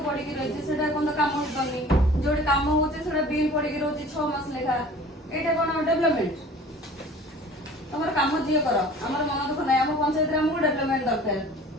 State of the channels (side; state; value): both; normal; correlation 0.45